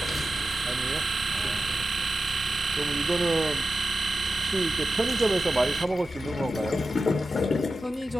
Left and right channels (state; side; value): normal; both; correlation 0.93